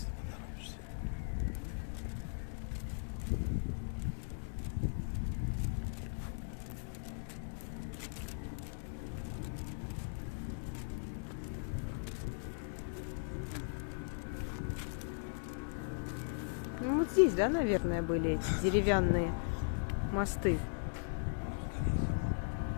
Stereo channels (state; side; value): silent; right; digital silence